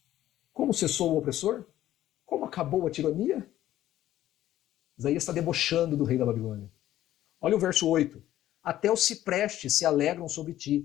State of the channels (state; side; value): quieter; right; 13.4 dB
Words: como cessou o opressor? Como acabou a tirania? Isaías está debochando do rei da Babilônia. Olha o verso 8. Até os ciprestes se alegram sobre ti,